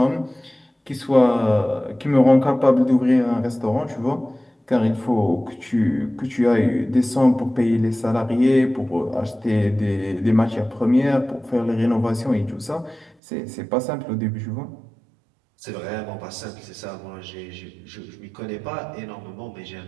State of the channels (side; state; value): left; drops out; at 13.2 s